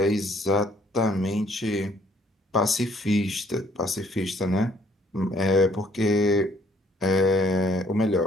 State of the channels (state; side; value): normal; both; correlation 0.62